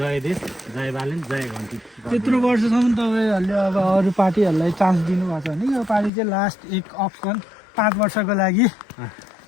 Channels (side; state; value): right; drops out; at 6.1 s